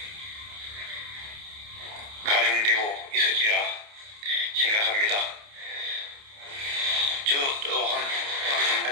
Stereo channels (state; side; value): late; left; 29 ms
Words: 가중되고 있으리라 생각합니다. 저 또한